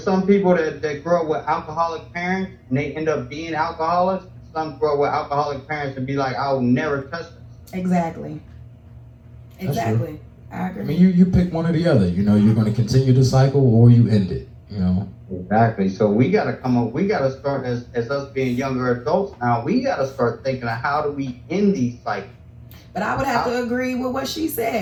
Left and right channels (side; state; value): both; identical; correlation 1.00